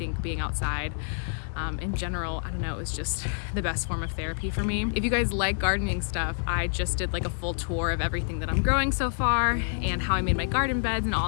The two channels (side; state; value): right; silent; digital silence